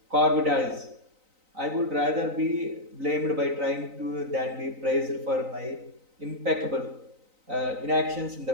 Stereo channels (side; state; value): left; late; 3.9 ms